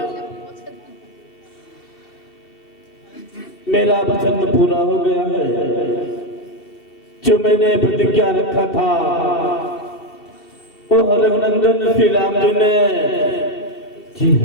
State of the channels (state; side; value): late; right; 2.7 ms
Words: मेरा वचन पूरा हो गया है। जो मैंने प्रतिज्ञा रखा था वो रघुनंदन श्री राम जी ने